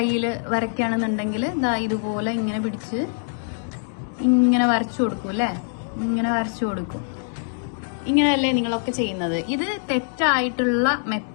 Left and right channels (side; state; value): right; silent; digital silence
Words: വരയ്ക്കുകയാണെന്നുണ്ടെങ്കിൽ ഇതുപോലെ ഇങ്ങനെ പിടിച്ച് ഇങ്ങനെ വരച്ചു കൊടുക്കും അല്ലേ? ഇങ്ങനെ വരച്ചു കൊടുക്കും. ഇങ്ങനെയല്ലേ നിങ്ങളൊക്കെ ചെയ്യുന്നത്? ഇത് തെറ്റായിട്ടുള്ള